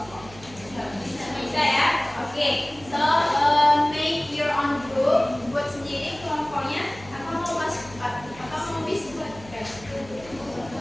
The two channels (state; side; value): noise; right; hum, 19 dB below the sound